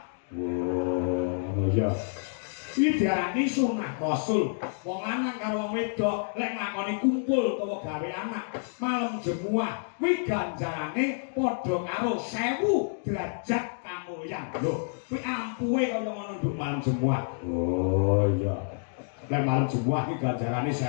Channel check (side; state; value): right; silent; digital silence